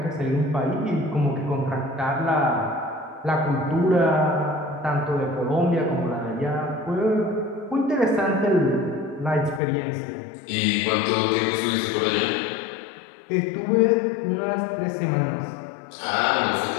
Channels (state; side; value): drops out; right; at 9.6 s